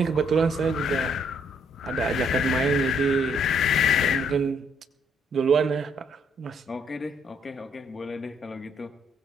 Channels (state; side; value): normal; both; correlation 0.69